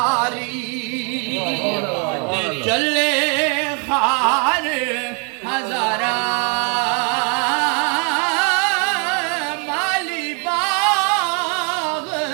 चले खार हजारा माली बाग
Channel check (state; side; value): quieter; left; 37.4 dB